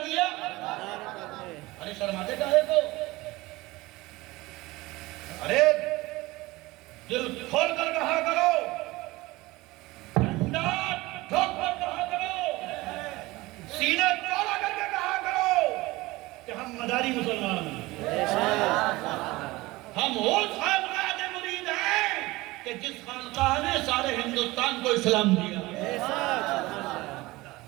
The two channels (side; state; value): left; quieter; 20.4 dB